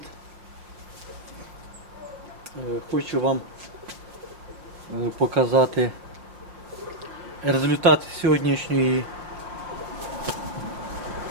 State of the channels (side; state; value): left; late; 5.6 ms